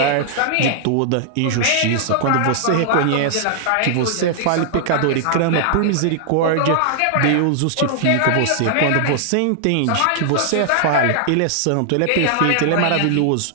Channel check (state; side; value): different; both; correlation -0.01